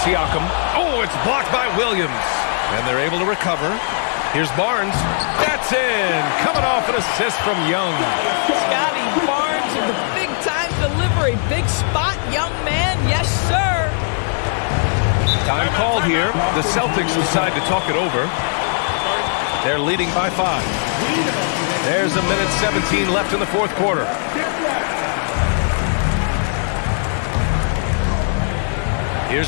Oh, it's blocked by Williams. And they're able to recover. Here's Barnes. That's in. Coming off an assist from Young. Scotty Barnes in the big-time delivery. Big spot, young man. Yes, sir. Time called here. The Celtics decide to talk it over. They're leading by 5. There's 1:17 left in the fourth quarter.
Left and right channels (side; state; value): right; silent; digital silence